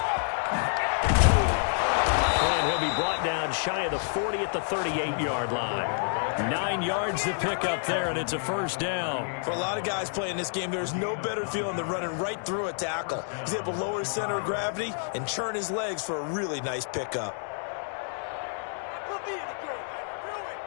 And he'll be brought down shy of the 40 at the 38-yard line. 9 yards to pick up there, and it's a 1st down. For a lot of guys playing this game, there's no better feeling than running right through a tackle. He's able to lower his center of gravity and churn his legs for a really nice pickup.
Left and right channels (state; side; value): silent; right; digital silence